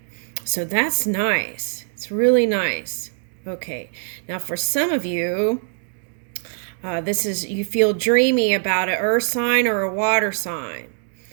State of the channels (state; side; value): silent; left; digital silence